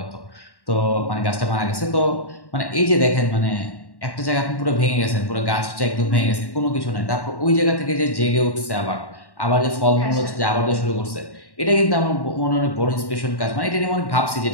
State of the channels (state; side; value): late; right; 1.1 ms